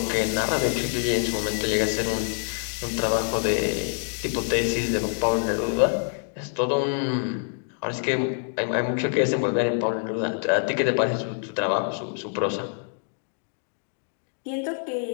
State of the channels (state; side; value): silent; right; 58 dB below the other